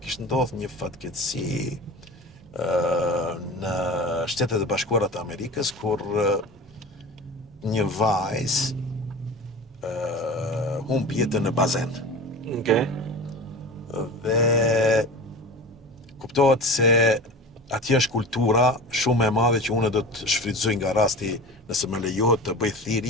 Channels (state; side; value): normal; both; correlation 0.33